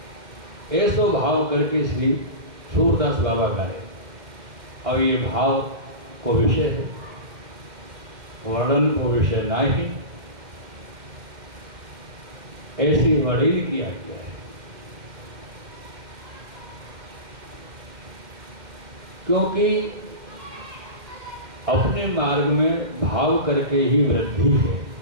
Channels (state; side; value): late; left; 2.1 ms